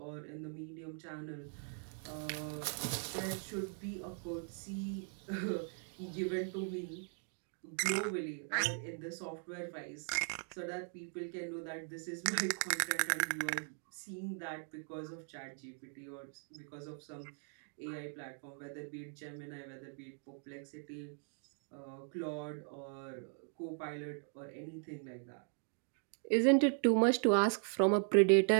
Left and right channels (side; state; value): left; silent; 52 dB below the other